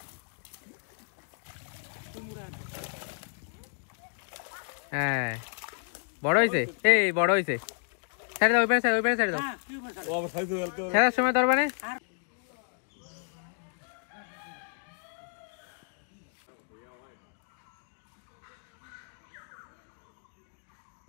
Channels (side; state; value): right; silent; digital silence